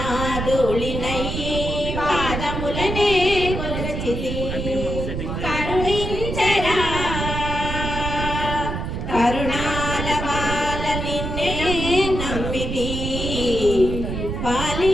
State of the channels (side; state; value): right; noise; rumble, 4 dB below the sound